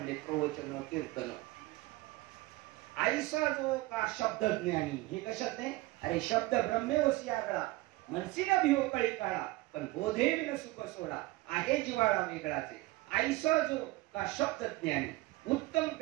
प्रवचन कीर्तन. आईसा जो का शब्द ज्ञानी, हे कशात नाही. अरे शब्द ब्रह्मेवसी आगळा, मनसीना भिव कळी काळा, पण बोधे विन सुख सोडा, आहे जिवाळा वेगळाचे. आईसा जो का शब्द ज्ञानी, उत्तम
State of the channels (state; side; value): quieter; left; 19.7 dB